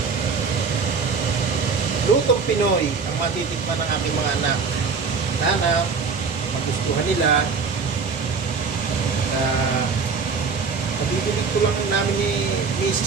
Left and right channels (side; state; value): left; quieter; 5.2 dB